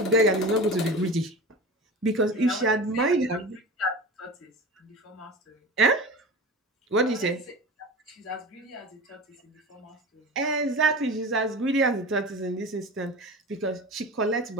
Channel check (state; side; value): normal; both; correlation 0.32